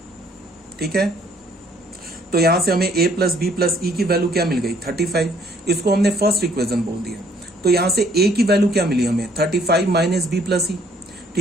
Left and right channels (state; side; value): normal; both; correlation 0.62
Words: ठीक है। तो यहां से हमें a प्लस बी प्लस ई की वैल्यू क्या मिल गई? 35। इसको हमने फर्स्ट इक्वेशन बोल दिया। तो यहां से a की वैल्यू क्या मिली हमें? 35 माइनस बी प्लस ई।